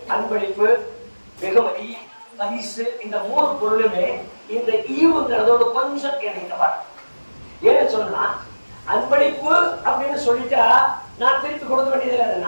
அன்பளிப்பு, வெகுமதி, பரிசு, இந்த 3 பொருளுமே இந்த ஈவுங்கிறதோட கொஞ்சம் இணைந்தவர். ஏன்னு சொன்னா, அன்பளிப்பு அப்படின்னு சொல்லிட்டா நான் திருப்பி கொடுக்க வேண்டியதில்லை.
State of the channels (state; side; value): inverted; both; correlation -1.00